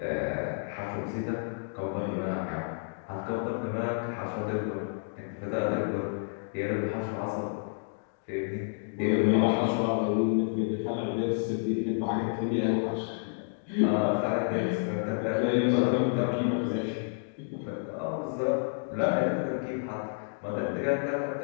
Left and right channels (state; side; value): silent; right; digital silence